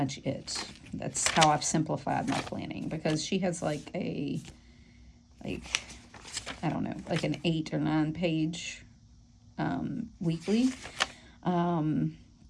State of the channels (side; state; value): both; identical; correlation 1.00